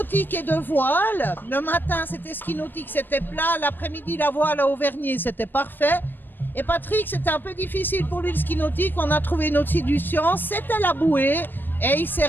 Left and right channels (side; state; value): right; late; 0.093 ms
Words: et de voile. Le matin, c'était ski nautique, c'était plat. L'après-midi, la voile à Auvergne, c'était parfait. Et Patrick, c'était un peu difficile pour lui le ski nautique. On a trouvé une autre solution, c'était la bouée. Et il s'est